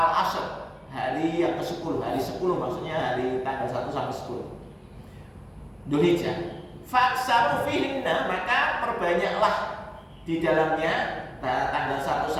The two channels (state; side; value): identical; both; correlation 1.00